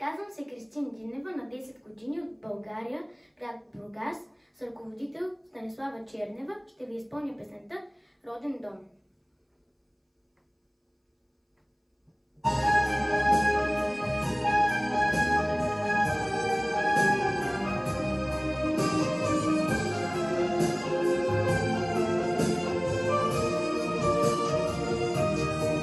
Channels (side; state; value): both; identical; correlation 1.00